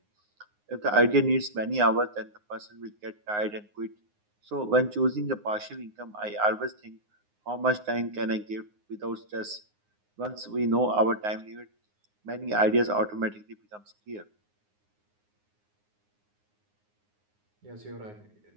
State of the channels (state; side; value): late; left; 9.6 ms